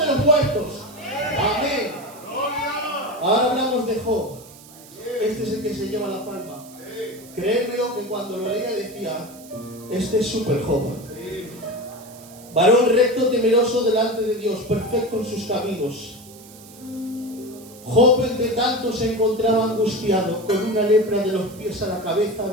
los muertos. Amén. Ahora hablamos de Job. Este es el que se lleva la palma. Créemelo que cuando lo leía decía: este es súper Job. Varón recto, temeroso delante de Dios, perfecto en sus caminos. Job, entre tanto, se encontraba angustiado, con una lepra de los pies a la cabeza,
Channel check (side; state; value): right; noise; hiss, 21 dB below the sound